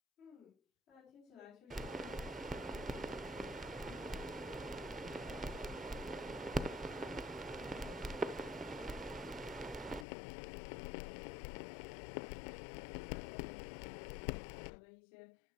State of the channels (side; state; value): right; drops out; at 10.1 s